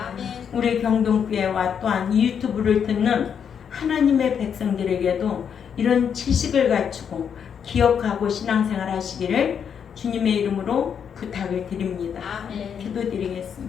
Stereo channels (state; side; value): quieter; right; 7.6 dB